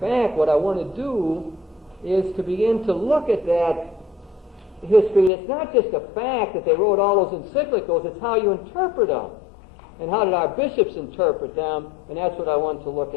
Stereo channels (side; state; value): right; drops out; at 5.3 s